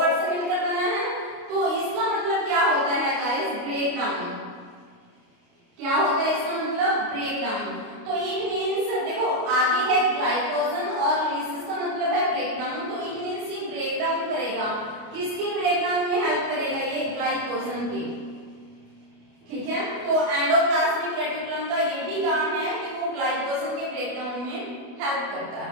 से मिलकर बना है, तो इसका मतलब क्या होता है गाइस? Break down. क्या होता है इसका मतलब? Break down. तो इट मींस देखो आगे है ग्लाइकोजन और लिसिस का मतलब है ब्रेक डाउन, तो इट मींस ये ब्रेक डाउन करेगा। किसकी ब्रेक डाउन में हेल्प करेगा? ये ग्लाइकोजन की, ठीक है। तो एंडोप्लाज्मिक रेटिकुलम का ये भी काम है कि वो ग्लाइकोजन के ब्रेकडाउन में हेल्प करता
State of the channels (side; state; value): left; late; 29 ms